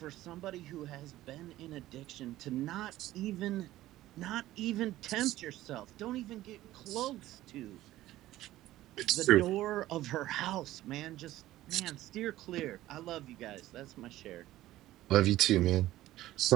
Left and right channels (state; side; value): quieter; left; 15.3 dB